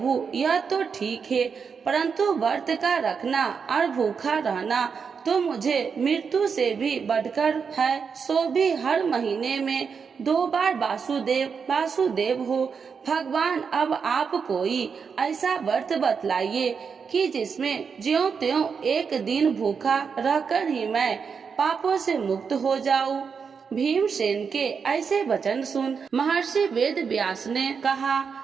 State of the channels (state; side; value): quieter; left; 6.0 dB